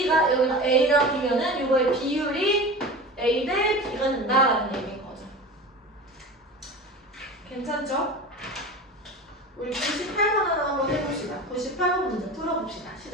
여기가 A랑 B면은 요거의 비율이 A 대 B가 된다라는 얘기인 거죠. 괜찮죠? 우리 98번 하나 한번 해봅시다. 98번 문제 풀어봅시다.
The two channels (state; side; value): normal; both; correlation 0.32